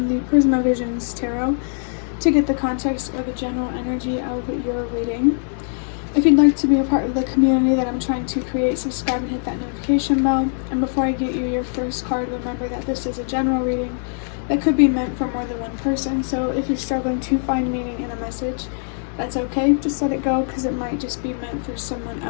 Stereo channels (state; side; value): silent; right; digital silence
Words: the Prisma Visions Tarot to get the context or the general energy of your reading. If you'd like to be a part of the community that I'm trying to create, subscribe and hit that notification bell. And before I get you your first card, remember that this is a general reading that could be meant for more than one person. So if you're struggling to find meaning in a message, that's okay. Just let it go, because it might just be meant for someone